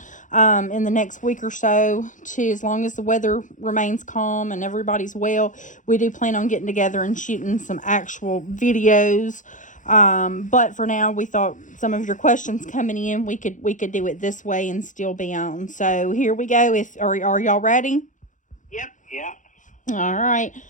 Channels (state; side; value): late; right; 0.37 ms